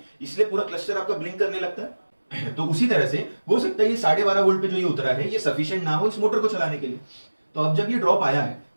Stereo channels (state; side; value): inverted; both; correlation -1.00